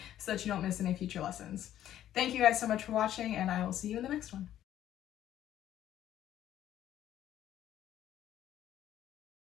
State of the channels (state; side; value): quieter; right; 11.8 dB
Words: so that you don't miss any future lessons. Thank you guys so much for watching, and I will see you in the next one.